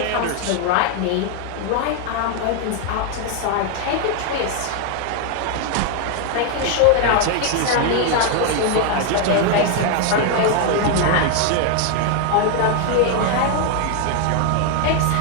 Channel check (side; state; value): both; different; correlation 0.01